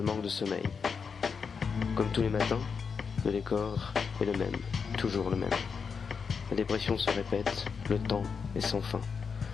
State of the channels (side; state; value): right; quieter; 5.8 dB